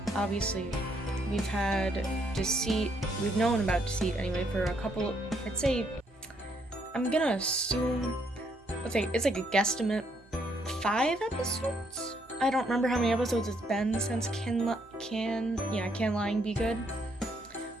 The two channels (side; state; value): both; normal; correlation 0.72